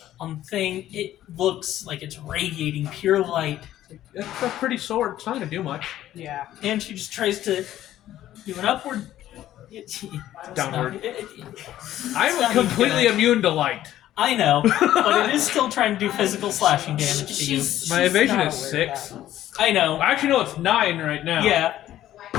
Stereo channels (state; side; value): quieter; right; 13.0 dB